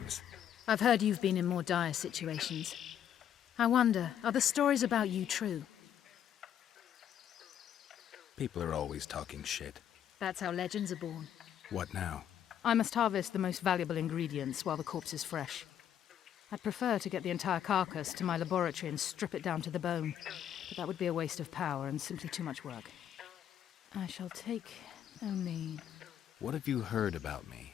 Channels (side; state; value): right; quieter; 9.8 dB